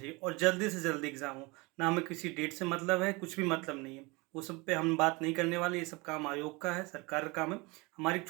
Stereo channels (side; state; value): left; quieter; 25.6 dB